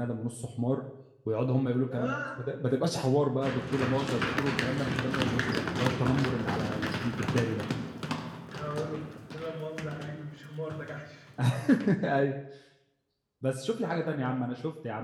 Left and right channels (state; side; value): identical; both; correlation 1.00